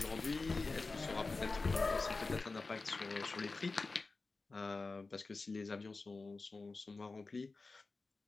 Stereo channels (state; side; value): quieter; right; 3.8 dB